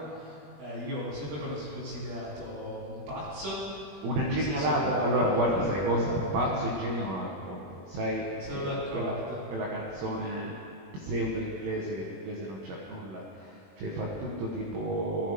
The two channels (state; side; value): late; left; 21 ms